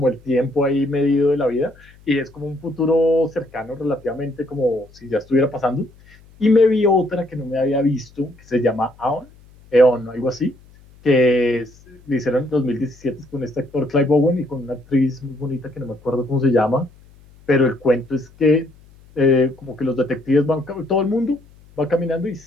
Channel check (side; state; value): left; noise; hum, 26 dB below the sound